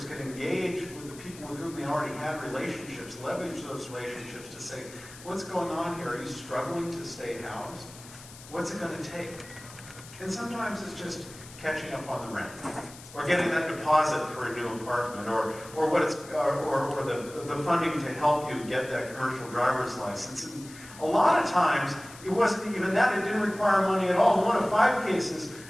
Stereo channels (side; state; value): left; noise; hiss, 18 dB below the sound